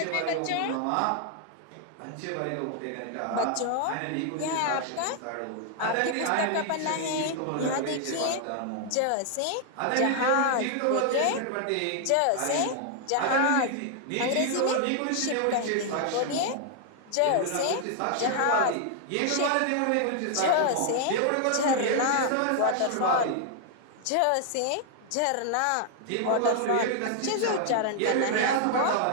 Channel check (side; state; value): both; different; correlation 0.00